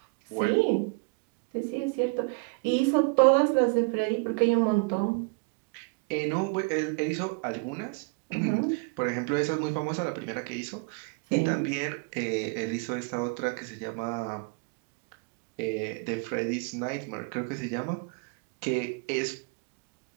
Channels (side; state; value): left; quieter; 32.3 dB